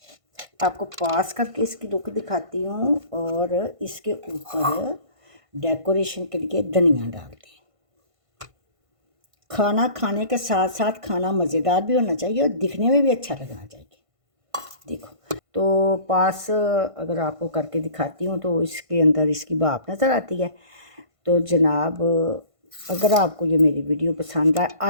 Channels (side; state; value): left; late; 1.5 ms